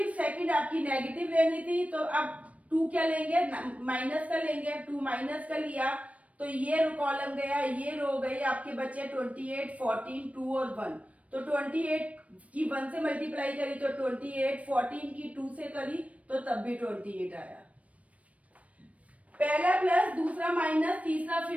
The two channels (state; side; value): late; left; 0.066 ms